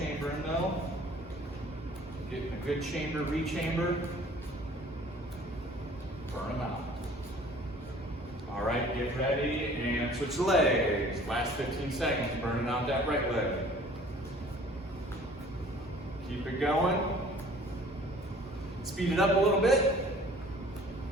though. Getting a good chamber, rechamber. Burn them out. All right, get ready and switch legs. Last 15 seconds, burning out that right leg. Keep it going. Speed it up a little bit.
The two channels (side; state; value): both; normal; correlation 0.51